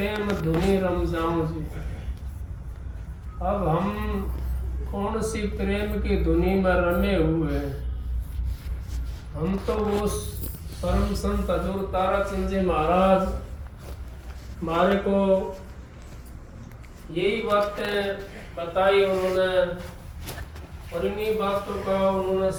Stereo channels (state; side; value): identical; both; correlation 1.00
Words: धुनी रम जाऊं जी। अब हम कौन सी प्रेम की धुनी में रमे हुए हैं। हम तो वो परम संत हजूर ताराचंद जी महाराज हमारे को यही बातें बताई उन्होंने, और इन्हीं बातों का उन्होंने